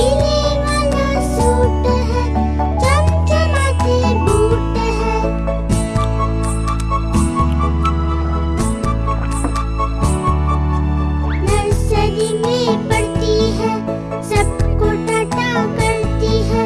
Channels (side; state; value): both; identical; correlation 1.00